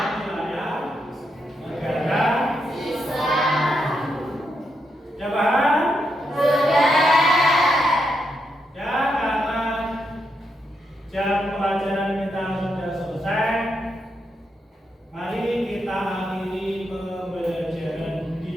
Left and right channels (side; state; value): both; normal; correlation 0.82